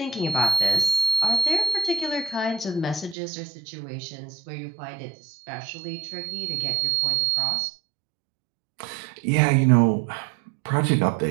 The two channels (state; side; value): drops out; left; at 3.2 s